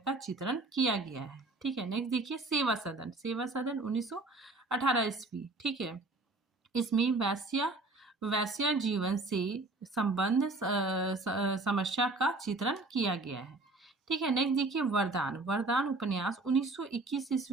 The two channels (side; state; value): left; quieter; 3.2 dB